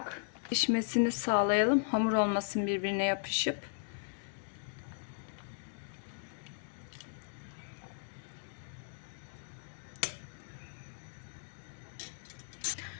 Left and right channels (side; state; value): right; silent; digital silence